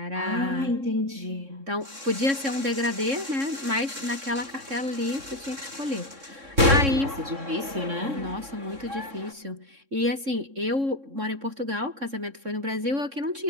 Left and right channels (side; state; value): left; late; 3.6 ms